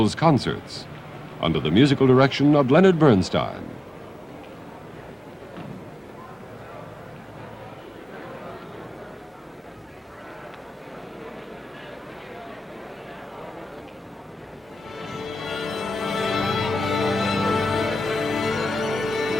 Concerts, under the musical direction of Leonard Bernstein.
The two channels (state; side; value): normal; both; correlation 0.96